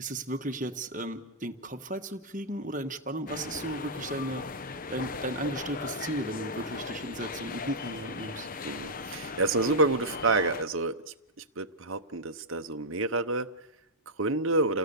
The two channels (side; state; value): both; normal; correlation -0.06